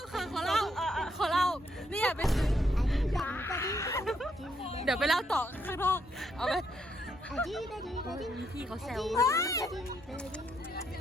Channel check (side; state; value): both; normal; correlation 0.75